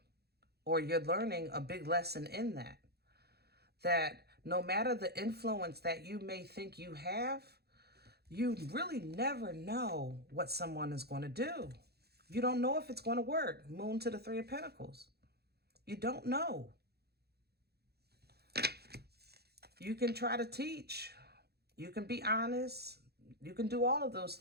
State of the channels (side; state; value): left; late; 0.47 ms